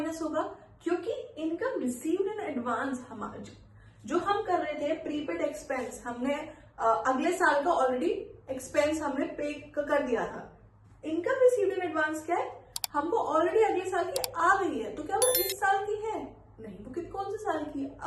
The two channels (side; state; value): both; identical; correlation 1.00